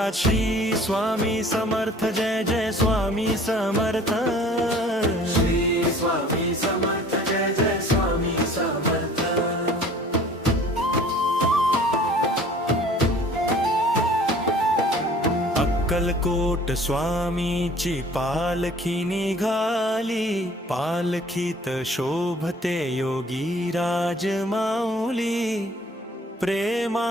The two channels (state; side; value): normal; both; correlation 0.51